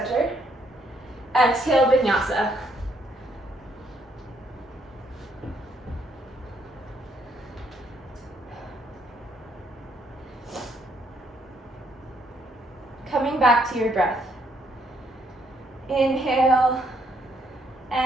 Exhale, vinyasa. Coming back to your breath. Inhale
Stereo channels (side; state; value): both; normal; correlation 0.70